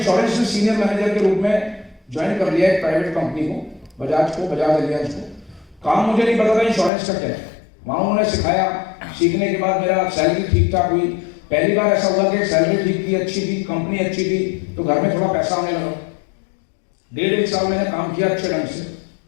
में सीनियर मैनेजर के रूप में ज्वाइन कर लिया एक प्राइवेट कंपनी को, बजाज एलियांज को। काम मुझे नहीं पता था इंश्योरेंस का क्या है, वहां उन्होंने सिखाया। सीखने के बाद मेरा सैलरी ठीक ठाक हुई। पहली बार ऐसा हुआ कि सैलरी ठीक थी, अच्छी थी, कंपनी अच्छी थी, तो घर में थोड़ा पैसा आने लगा। 1.5 साल मैंने काम किया अच्छे ढंग से,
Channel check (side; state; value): right; drops out; at 6.9 s